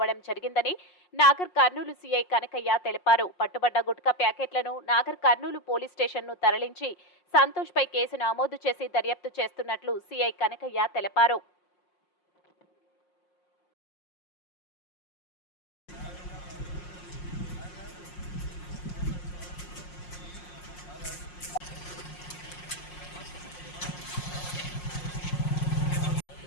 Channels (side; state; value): right; late; 5.6 ms